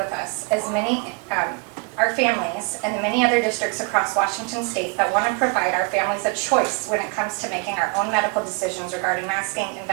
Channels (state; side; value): quieter; left; 31.5 dB